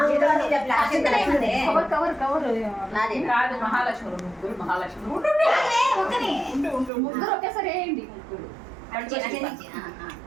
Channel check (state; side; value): drops out; left; at 6.9 s